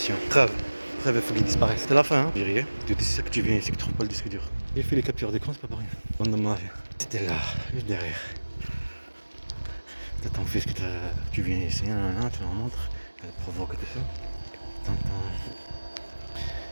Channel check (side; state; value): both; inverted; correlation -1.00